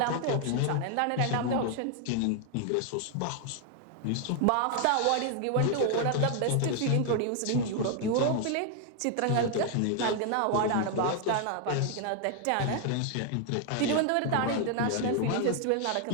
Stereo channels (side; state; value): both; different; correlation 0.00